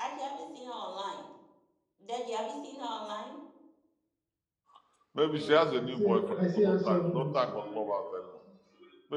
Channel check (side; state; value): both; identical; correlation 1.00